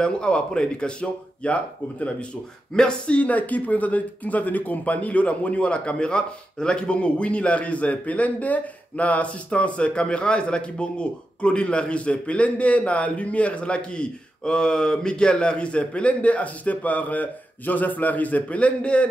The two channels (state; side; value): normal; both; correlation 0.89